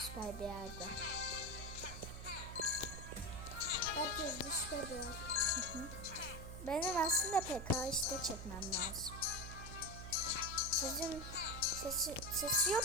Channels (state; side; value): noise; right; hum, 9 dB below the sound